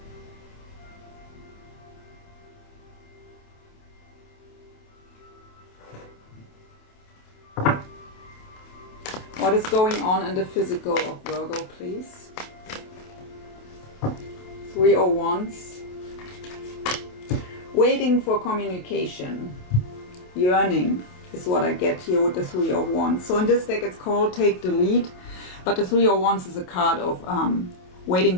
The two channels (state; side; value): late; right; 28 ms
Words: What is going on in the physical of Virgo, please? Three of Wands. Waiting for communication. Yearning is what I get here with the Three of Wands. So in this deck it's called Take the Lead, but the Three of Wands is a card of